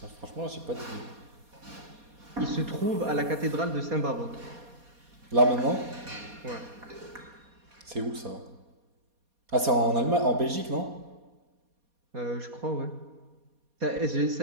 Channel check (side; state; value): left; late; 4.2 ms